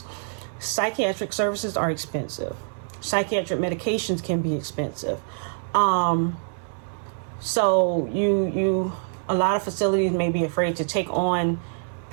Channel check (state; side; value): silent; left; 62 dB below the other